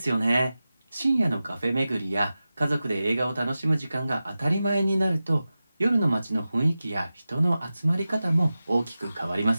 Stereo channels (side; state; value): both; inverted; correlation -0.95